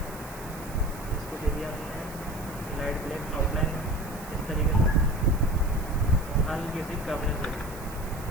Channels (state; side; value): noise; right; hiss, 17 dB below the sound